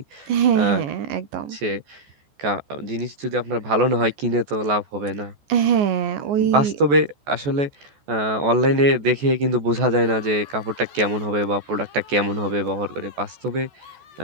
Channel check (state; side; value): late; left; 14 ms